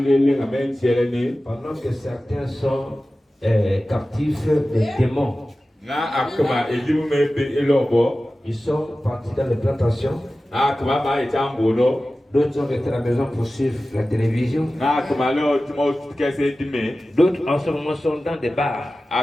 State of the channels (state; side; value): normal; both; correlation 0.95